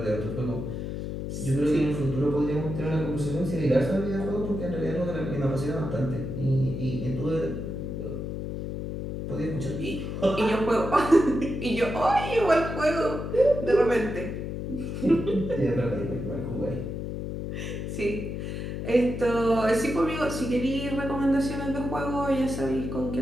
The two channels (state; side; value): noise; left; hum, 5 dB below the sound